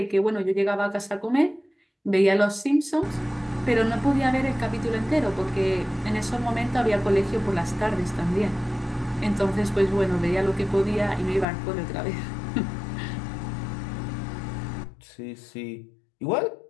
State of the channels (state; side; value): drops out; right; at 11.5 s